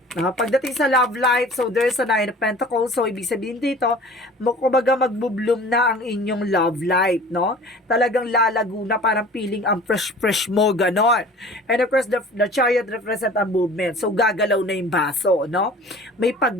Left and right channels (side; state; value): both; normal; correlation 0.45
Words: Pagdating sa love life, so there's a Nine of Pentacles. So, ibig sabihin dito, kumbaga magbubloom na ang inyong love life, no? Talagang lalago na, parang feeling ang fresh mo, ganon. And of course, the Chariot represent a movement. So, gagalaw na yung baso, no? May